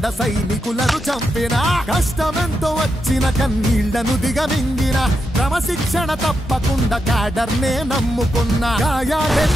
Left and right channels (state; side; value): normal; both; correlation 0.85